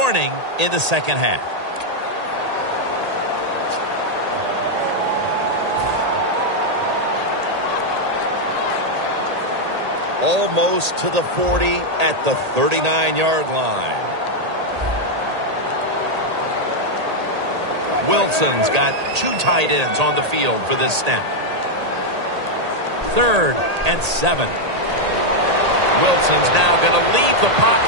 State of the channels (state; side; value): late; left; 1.8 ms